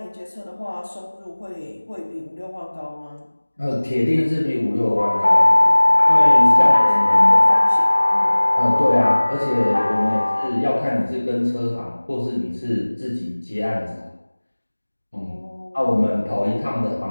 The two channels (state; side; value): inverted; both; correlation -1.00